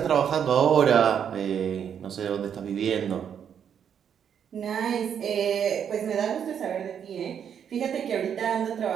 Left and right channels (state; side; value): quieter; left; 8.2 dB